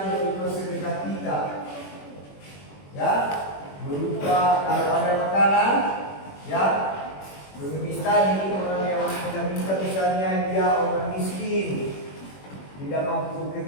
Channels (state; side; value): late; right; 21 ms